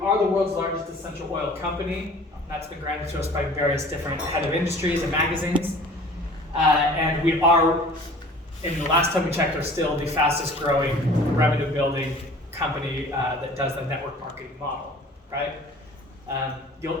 the world's largest essential oil company. That's been granted to us by various different head of industries and magazines. And we are, in the last time we checked, are still the fastest growing revenue building company that does the network marketing model, right?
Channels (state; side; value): normal; both; correlation 0.47